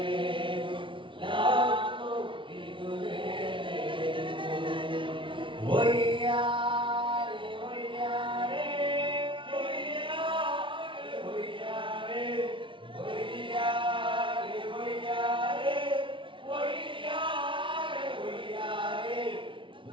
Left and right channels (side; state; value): left; late; 0.25 ms